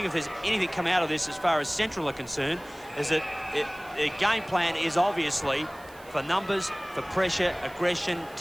if there's anything come out of this as far as Central are concerned, is that the game plan is obviously for numbers, for pressure, aggression,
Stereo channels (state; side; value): noise; right; hiss, 24 dB below the sound